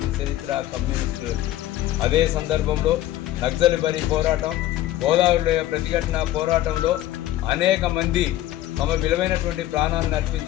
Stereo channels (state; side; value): quieter; right; 14.2 dB